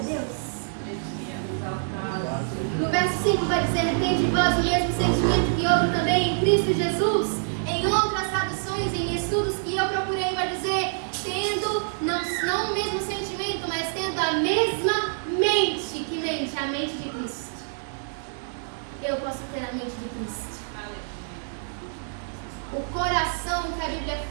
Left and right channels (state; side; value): silent; left; 57 dB below the other